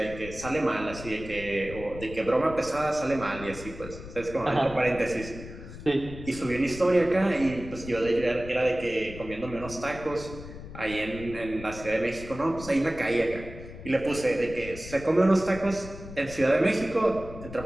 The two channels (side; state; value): left; noise; rumble, 13 dB below the sound